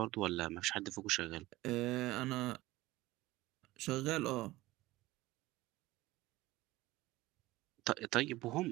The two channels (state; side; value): quieter; left; 18.3 dB